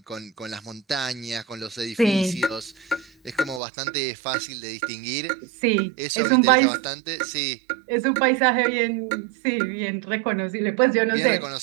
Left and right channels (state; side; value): drops out; left; at 3.6 s